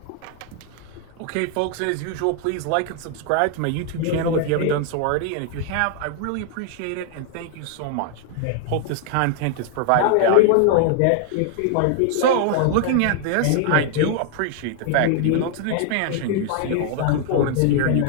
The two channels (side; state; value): both; different; correlation 0.00